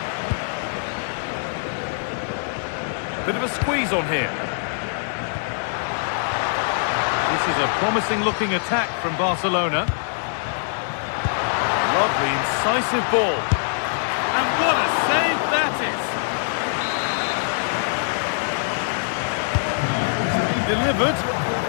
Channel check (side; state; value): right; silent; 62 dB below the other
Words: Bit of a squeeze on here. This is a promising-looking attack from Barcelona. Lovely, incisive ball. And what a save that is! Delivered.